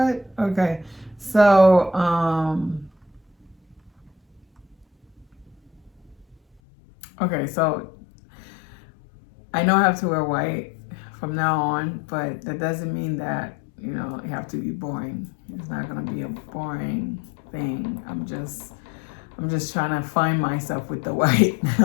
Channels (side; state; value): right; drops out; at 6.6 s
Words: Okay, so so I know I have to wear white from now on, but that doesn't mean that you have to be boring. It's not gonna be a boring thing. I'm just trying to find myself with the white